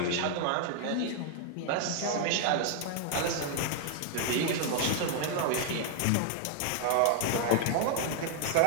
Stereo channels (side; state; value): both; different; correlation 0.00